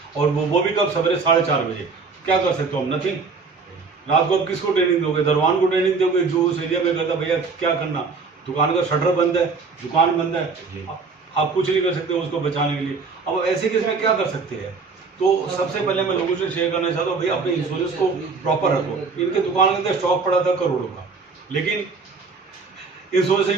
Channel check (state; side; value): quieter; left; 4.6 dB